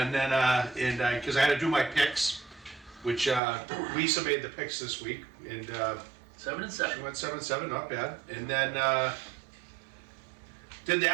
then because I had to do my picks, which Lisa made the picks this week, and 7 and she 7. went 7-7, not bad. And then did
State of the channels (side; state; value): left; drops out; at 3.4 s